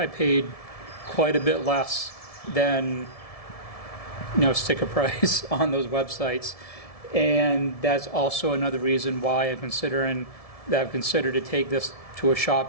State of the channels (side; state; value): right; late; 1.7 ms